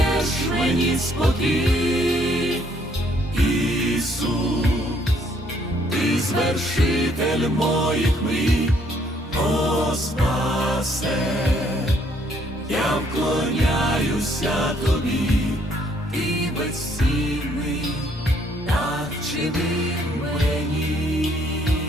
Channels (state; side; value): normal; both; correlation 0.67